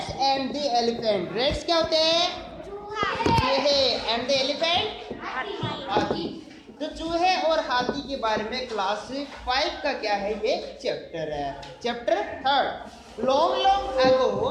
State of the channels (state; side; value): identical; both; correlation 1.00